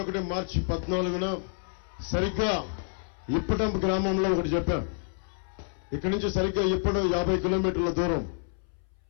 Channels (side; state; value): right; silent; 59 dB below the other